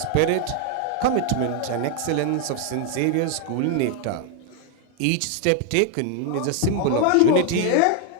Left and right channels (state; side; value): different; both; correlation 0.00